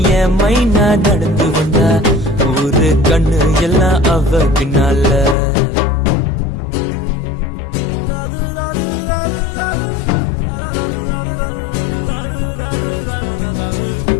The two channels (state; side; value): drops out; right; at 5.4 s